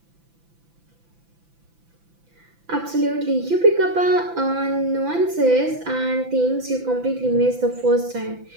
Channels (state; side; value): late; left; 5.9 ms